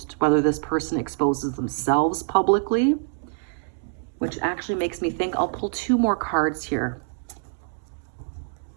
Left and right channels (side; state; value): left; silent; digital silence